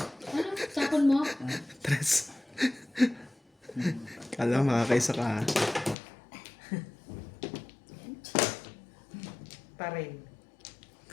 Tapon mo? Tres. Kala mo makakaisa ka ha? Pa rin.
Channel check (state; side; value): drops out; right; at 6.0 s